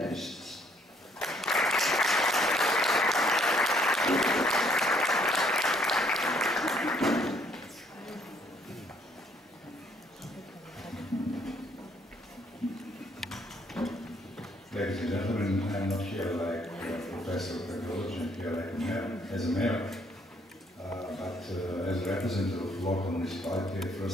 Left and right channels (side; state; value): both; normal; correlation 0.66